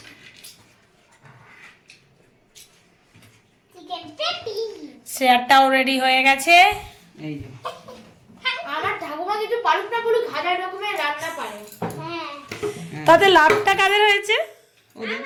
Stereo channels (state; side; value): identical; both; correlation 1.00